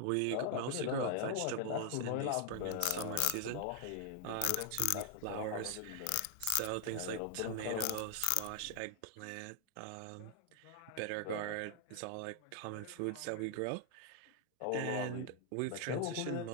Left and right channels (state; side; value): different; both; correlation 0.00